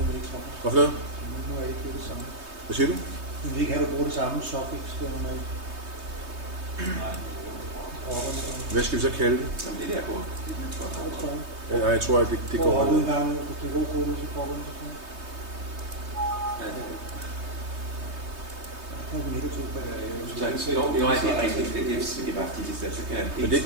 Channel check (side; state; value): left; late; 3.2 ms